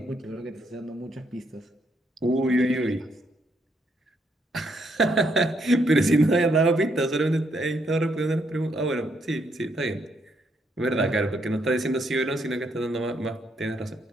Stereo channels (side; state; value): both; normal; correlation 0.74